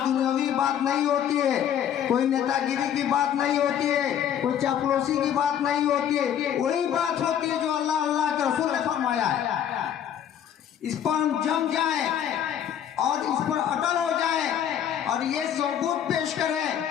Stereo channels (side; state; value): right; quieter; 9.6 dB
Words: बात नहीं होती है, कोई नेतागिरी की बात नहीं होती है, कोई चापलूसी की बात नहीं होती है। वही बात होती है जो अल्लाह अल्लाह के रसूल ने फरमाया है। इस पर हम जम जाएं और इस पर अटल हो जाएं और ये सबूत पेश करें